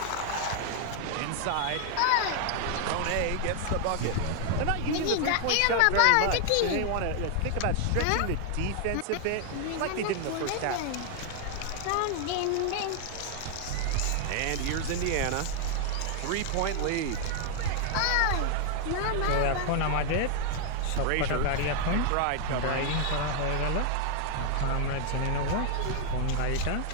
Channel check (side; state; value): both; different; correlation 0.00